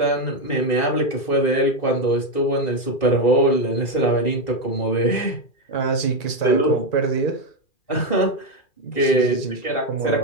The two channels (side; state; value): right; late; 2.4 ms